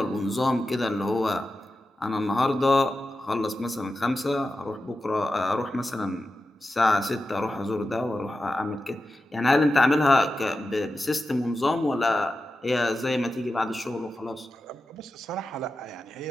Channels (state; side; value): normal; both; correlation 0.91